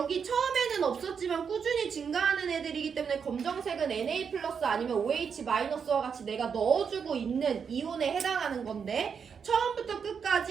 처음에는 없었지만 꾸준히 증가하는 애들이기 때문에 검정색은 Na 플러스 아니면 OH 마이너스와 같이 내가 넣어주고 있는 이온에 해당하는 건데 처음부터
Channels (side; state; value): left; quieter; 6.6 dB